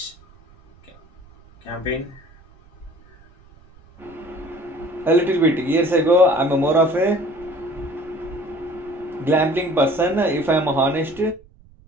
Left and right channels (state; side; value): noise; right; rumble, 26 dB below the sound